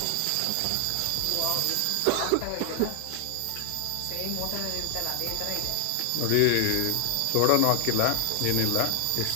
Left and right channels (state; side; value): different; both; correlation 0.00